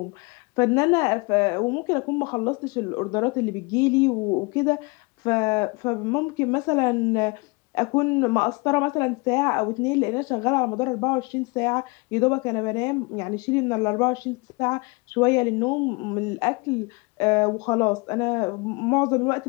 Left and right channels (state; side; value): quieter; right; 28.2 dB